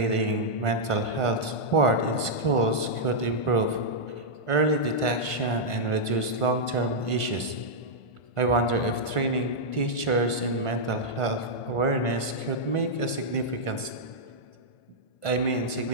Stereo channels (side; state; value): right; late; 1.5 ms